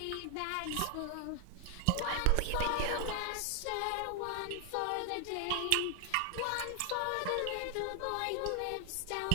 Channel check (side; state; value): both; different; correlation 0.00